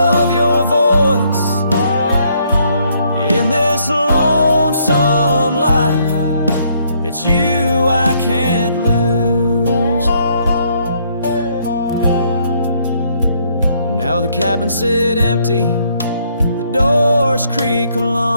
your voice. In this lonesome life, it's you I can't lose. Now the cabins sit empty, the doors creak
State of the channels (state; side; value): inverted; both; correlation -0.69